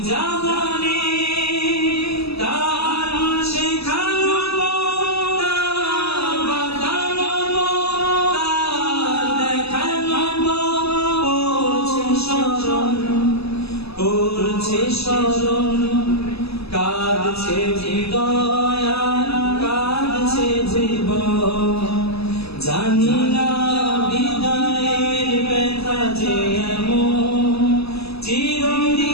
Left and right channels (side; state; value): right; late; 0.78 ms